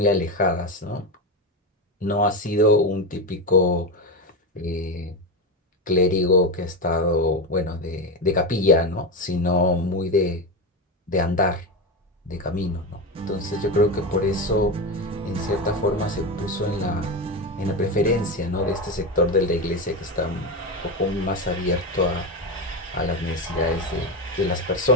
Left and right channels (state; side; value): normal; both; correlation 0.16